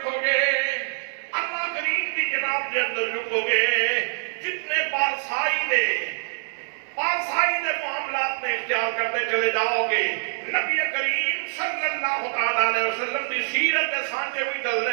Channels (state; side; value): silent; left; digital silence